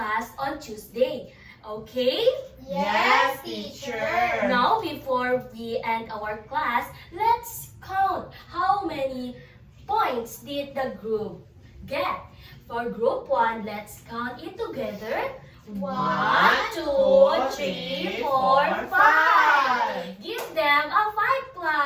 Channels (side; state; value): both; identical; correlation 1.00